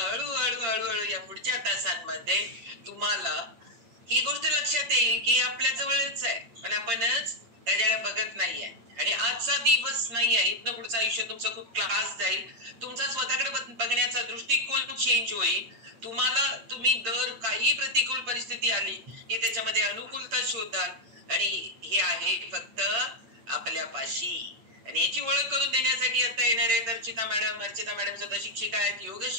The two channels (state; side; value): late; left; 8.7 ms